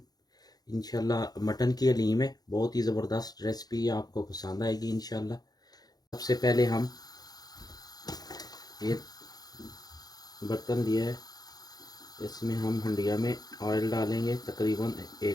इंशाल्लाह मटन की हलीम है। बहुत ही ज़बरदस्त रेसिपी है, आपको पसंद आएगी इंशाल्लाह। सबसे पहले हम ये बर्तन लिया है, इसमें हम हंडिया में ऑयल डालेंगे तकरीबन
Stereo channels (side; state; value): right; late; 0.19 ms